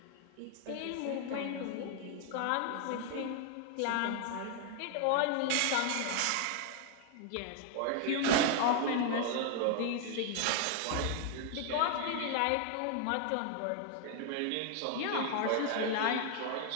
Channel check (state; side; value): different; both; correlation 0.00